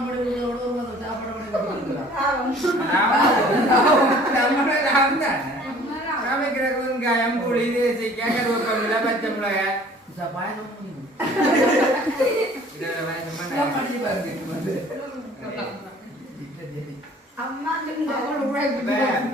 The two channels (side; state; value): both; normal; correlation 0.51